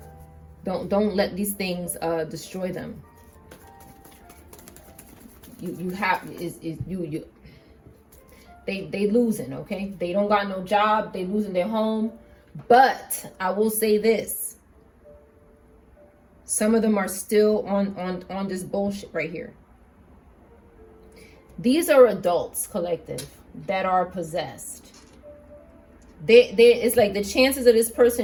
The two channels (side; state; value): both; identical; correlation 1.00